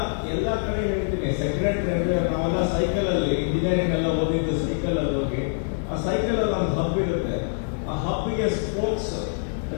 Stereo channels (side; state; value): right; silent; digital silence